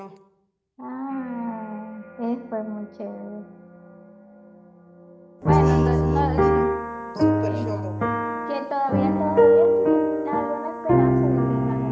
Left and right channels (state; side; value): identical; both; correlation 1.00